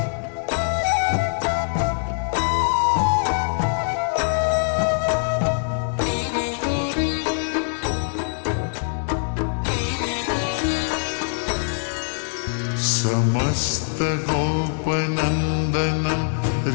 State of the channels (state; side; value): silent; right; digital silence